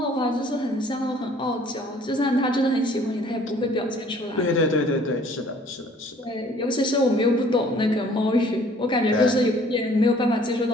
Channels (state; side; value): normal; both; correlation 0.56